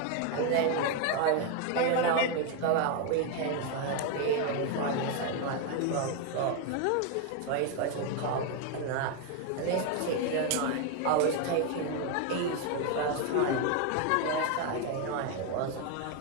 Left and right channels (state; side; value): different; both; correlation 0.01